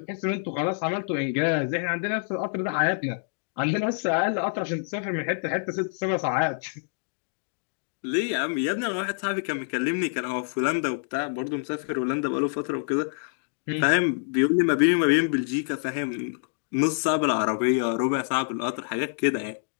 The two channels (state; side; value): silent; right; digital silence